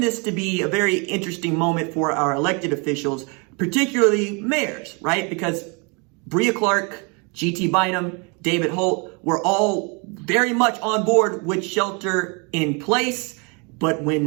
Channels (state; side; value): quieter; left; 32.4 dB